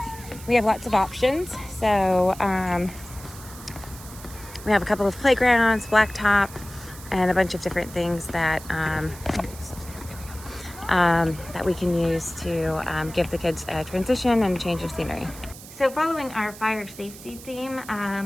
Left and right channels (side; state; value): right; noise; hiss, 17 dB below the sound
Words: we have lots of options. So we have a couple of playgrounds, blacktop, and a bunch of different things that that we can use to give the kids a transition and change of scenery. So following our fire safety theme,